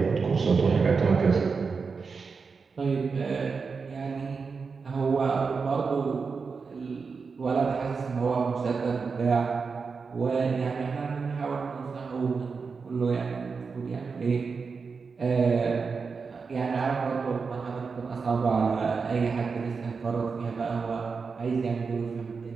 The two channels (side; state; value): left; quieter; 5.0 dB